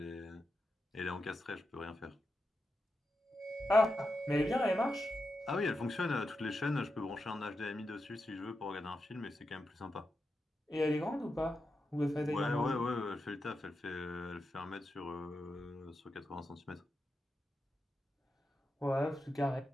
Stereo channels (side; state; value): both; normal; correlation 0.88